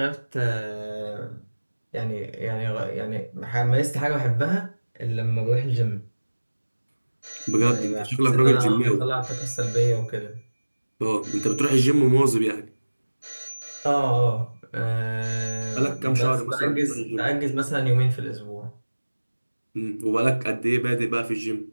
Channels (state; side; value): inverted; both; correlation -1.00